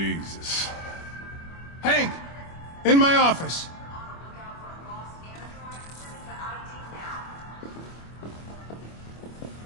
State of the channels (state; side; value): late; right; 25 ms